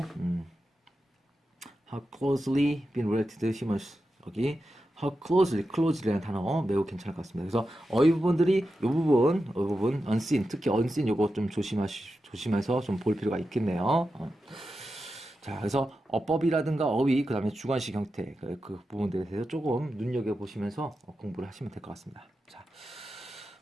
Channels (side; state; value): both; normal; correlation 0.90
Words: how closely been related to humans 여기 how closely라는 단어 매우 괜찮을 것 같습니다. 그래서 어휘 부분들이 이 부분 unseen 특히 unseen 요거 좀 조심해서 좀 볼 필요가 있겠네요. 자, 그래서 어법이라든가 어휘, 그 다음에 주관식 형태, 그 부분들에 대해서 조금 눈여겨보시면서 공부를 하시면 될 것 같습니다. 자,